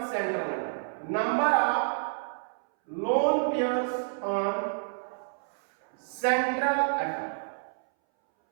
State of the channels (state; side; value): silent; left; 58 dB below the other